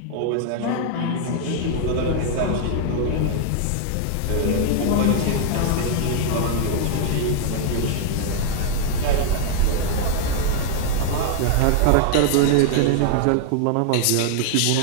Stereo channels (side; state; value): both; different; correlation 0.00